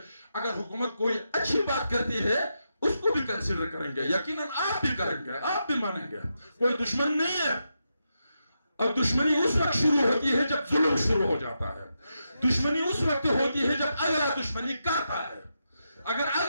अगर हुकूमत कोई अच्छी बात करती है उसको भी कंसीडर करेंगे, यकीनन आप भी करेंगे, आप भी मानेंगे। कोई दुश्मन नहीं है, और दुश्मनी उस वक्त शुरू होती है जब जुल्म शुरू हो जाता है। दुश्मनी उस वक्त होती है जब अगला दुश्मनी करता है। अगर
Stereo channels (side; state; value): both; inverted; correlation -0.86